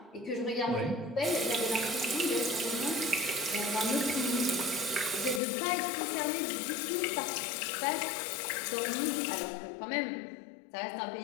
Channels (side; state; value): right; drops out; at 5.4 s